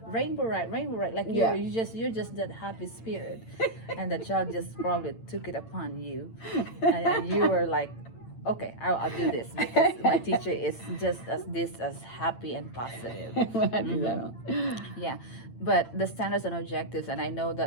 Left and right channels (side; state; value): right; late; 8.9 ms